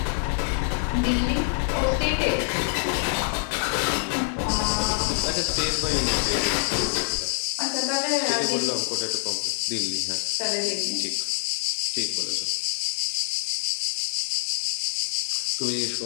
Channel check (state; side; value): silent; right; 61 dB below the other